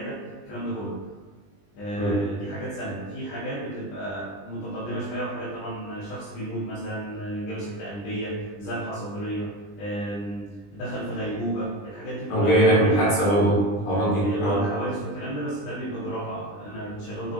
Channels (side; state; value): right; late; 20 ms